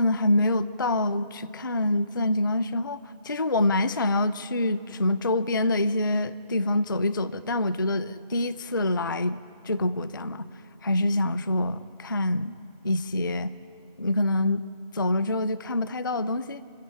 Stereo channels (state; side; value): inverted; both; correlation -0.73